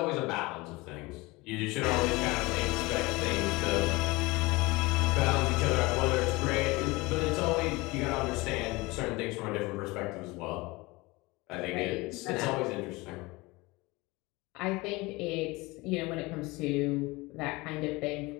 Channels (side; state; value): right; quieter; 23.0 dB